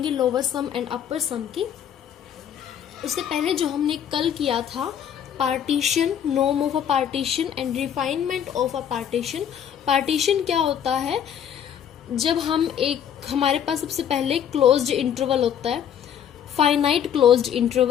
lower sum and upper sum की। उससे पहले जो हमने कल किया था पार्टीशन, नोम of a partition and refinement of a partition. Partition क्या होता है? जब हम हमारे पास सबसे पहले क्लोज्ड इंटरवल होता है, फाइनाइट क्लोज्ड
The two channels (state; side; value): quieter; right; 9.0 dB